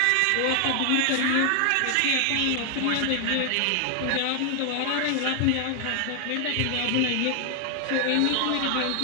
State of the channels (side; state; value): both; different; correlation 0.00